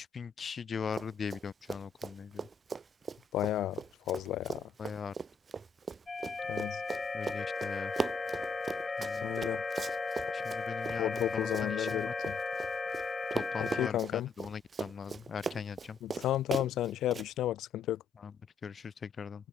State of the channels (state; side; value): quieter; right; 4.6 dB